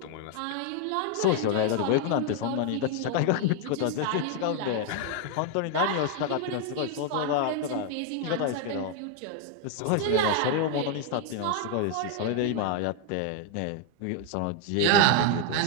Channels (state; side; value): different; both; correlation 0.00